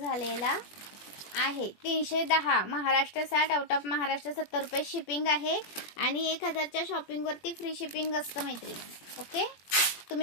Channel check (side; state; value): right; late; 21 ms